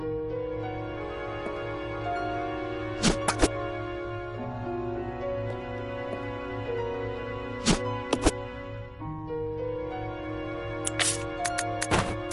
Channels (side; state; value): both; identical; correlation 1.00